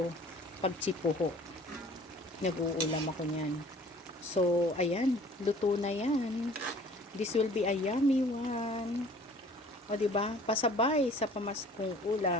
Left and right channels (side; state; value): both; normal; correlation 0.50